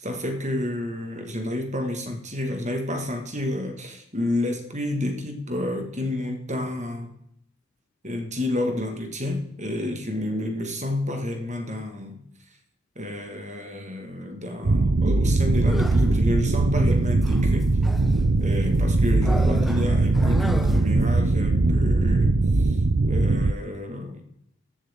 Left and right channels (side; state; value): both; normal; correlation 0.83